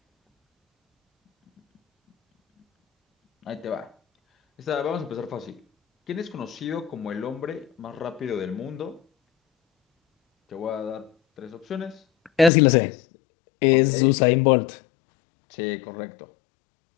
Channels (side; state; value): right; drops out; at 12.5 s